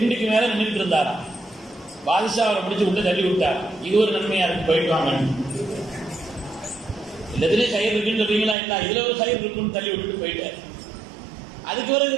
மேல நின்று இருந்தாராம். பாதுஷா அவரை பிடிச்சு உள்ள தள்ளி விட்டார். இது ஒரு நன்மையா இருக்கு, போயிட்டு வாங்க. எல்லாத்துலயும் கயிறு இருக்குன்னு சொல்றீங்களா, இல்ல இதுல ஒரு கயிறு இருக்குன்னு தள்ளி விட்டுட்டு போயிட்டார். அதுக்கு பிறகு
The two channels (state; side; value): drops out; left; at 8.6 s